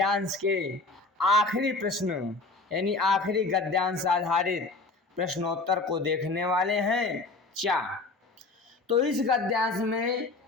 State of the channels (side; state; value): right; quieter; 3.5 dB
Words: के आखिरी प्रश्न यानी आखिरी गद्यांश आधारित प्रश्नोत्तर को देखने वाले हैं। तो इस गद्यांश में